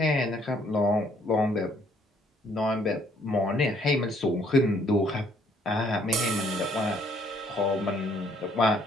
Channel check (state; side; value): normal; both; correlation 0.64